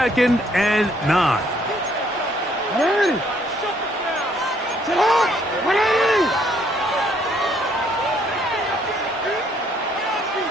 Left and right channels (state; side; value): normal; both; correlation 0.66